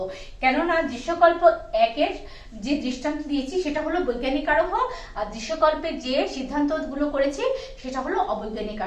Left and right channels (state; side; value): identical; both; correlation 1.00